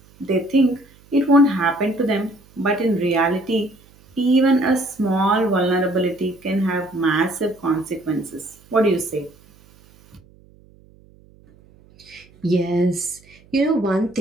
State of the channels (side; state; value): right; noise; hum, 28 dB below the sound